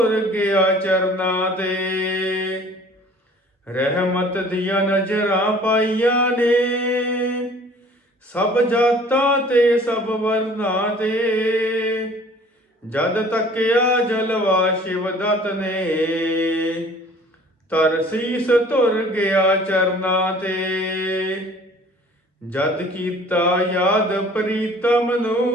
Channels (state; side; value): normal; both; correlation 0.50